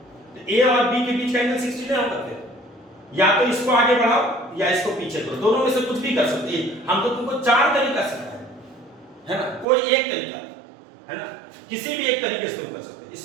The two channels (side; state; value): left; drops out; at 9.7 s